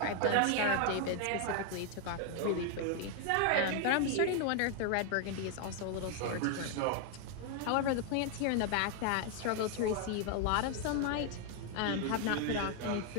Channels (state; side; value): different; both; correlation 0.00